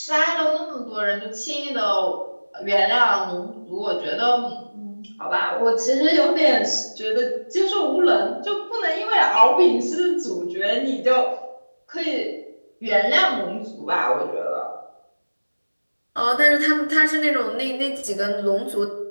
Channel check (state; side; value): inverted; both; correlation -1.00